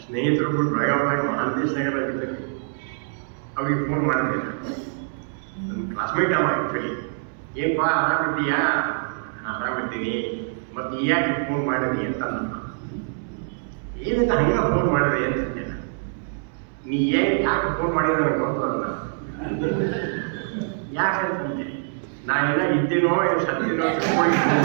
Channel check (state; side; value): silent; left; 62 dB below the other